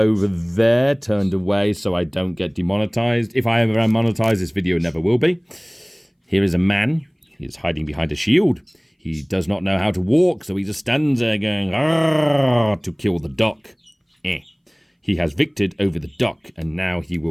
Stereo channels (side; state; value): both; identical; correlation 1.00